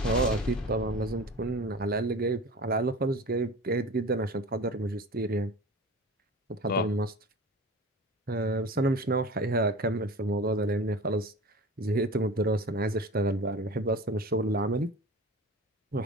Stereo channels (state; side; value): normal; both; correlation 0.35